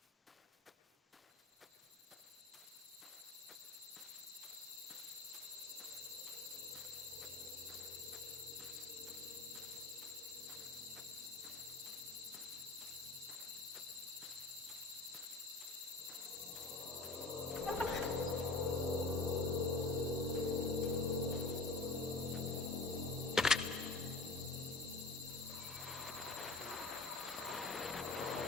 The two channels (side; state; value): right; quieter; 3.4 dB